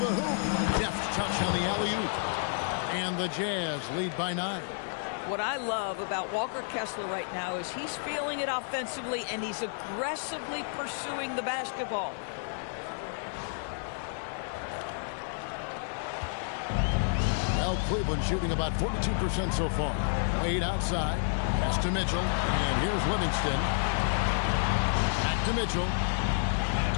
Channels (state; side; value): silent; right; digital silence